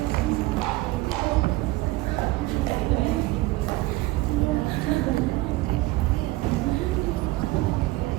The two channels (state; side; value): quieter; left; 19.6 dB